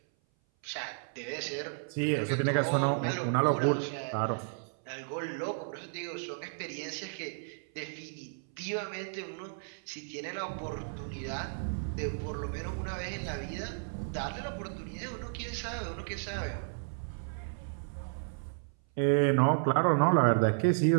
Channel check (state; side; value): silent; left; 56 dB below the other